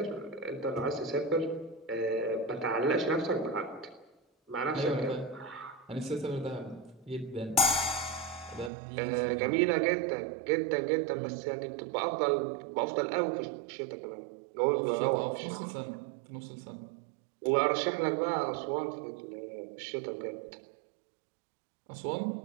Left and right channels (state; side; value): drops out; left; at 8.7 s